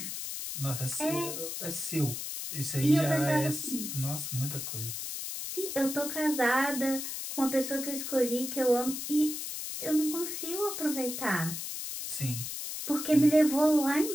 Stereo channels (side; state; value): left; noise; hiss, 6 dB below the sound